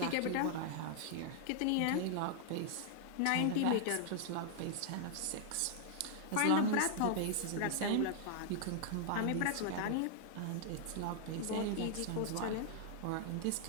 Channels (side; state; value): both; different; correlation 0.00